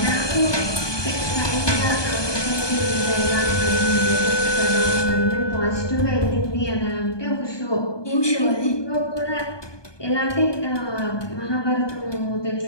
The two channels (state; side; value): late; right; 1.2 ms